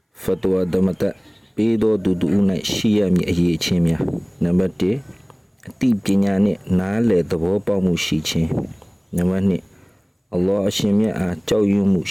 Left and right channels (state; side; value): identical; both; correlation 1.00